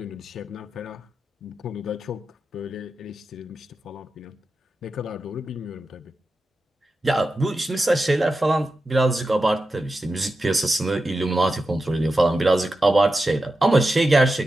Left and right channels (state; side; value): normal; both; correlation 0.91